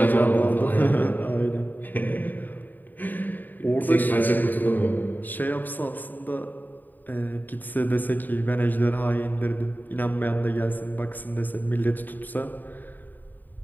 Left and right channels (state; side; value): late; right; 0.088 ms